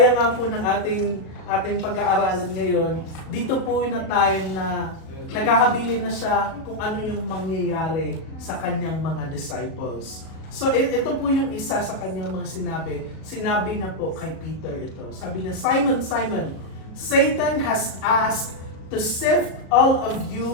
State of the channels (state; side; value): late; right; 37 ms